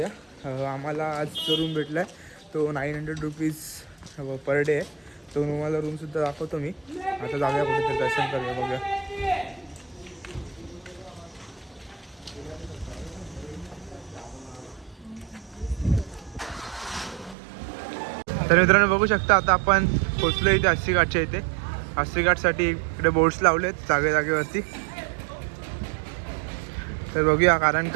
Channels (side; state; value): left; drops out; at 17.4 s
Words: आम्हाला आज जो रूम भेटला आहे तो 900 रुपीज पर डे आहे. तो तुम्हाला रूमसुद्धा दाखवतो मी. आता जाऊया कुठेतरी दर्शन करूया, बघूया. तर मित्रांनो बघू शकता आता आपण पोचलो इथे अस्सी घाटच्या इथे. अस्सी घाटसाठी इकडे बोर्ड्स लावलेत जागेवरती. तर बघूया, कारण